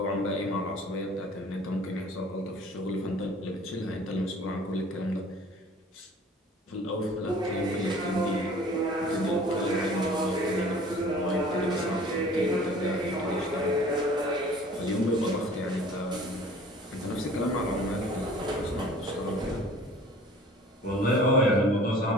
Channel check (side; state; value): both; normal; correlation 0.48